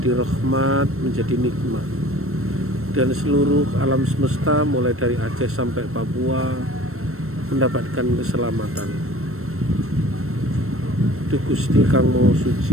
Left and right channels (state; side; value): late; left; 0.63 ms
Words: rahmat, menjadi nikmat, dan seluruh alam semesta mulai dari Aceh sampai Papua mendapatkan keselamatan. Duh Gusti Kang Maha